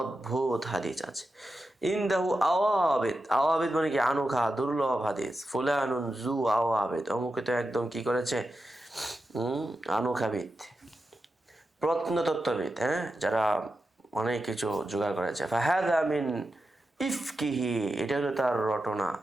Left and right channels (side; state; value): both; normal; correlation 0.90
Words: অদ্ভুত হাদিস আছে। ইনদাহু আওয়াবিদ, আওয়াবিদ মানে কি আনোখা দুর্লভ হাদিস। ফুলানুন জু আওয়াবিদ, অমুকে তো একদম কি করেছে আনোখাবিদ, প্রত্নতত্ত্ববিদ, হ্যাঁ, যারা অনেক কিছু জোগাড় করেছে। ফাহাদা মিন ইফকিহি, এটা হলো তার